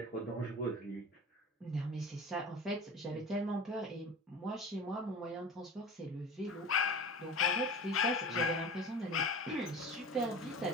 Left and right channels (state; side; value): normal; both; correlation 0.35